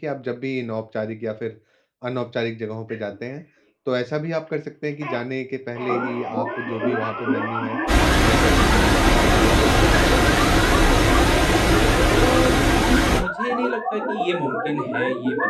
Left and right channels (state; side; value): identical; both; correlation 1.00